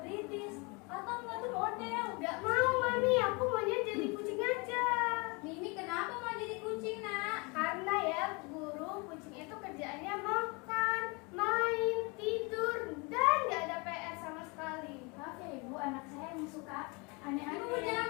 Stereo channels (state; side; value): quieter; right; 29.3 dB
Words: atau enggak tuh model? Gak mau Mami, aku maunya jadi kucing aja. Mimi kenapa mau jadi kucing nak? Karena ya guru, kucing itu kerjaannya makan, main, tidur, dan gak ada PR sama sekali. Maaf ya Ibu, anak saya yang suka Ibu aneh-aneh. jangan